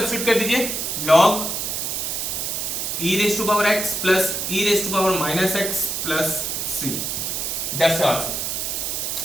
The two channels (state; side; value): noise; right; hiss, 2 dB below the sound